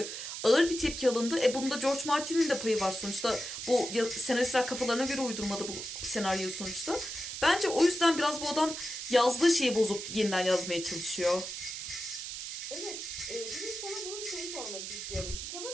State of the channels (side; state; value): right; noise; hiss, 7 dB below the sound